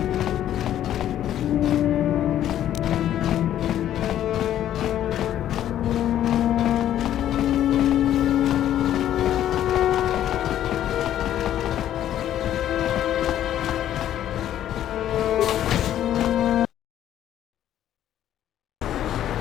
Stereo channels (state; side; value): quieter; right; 11.5 dB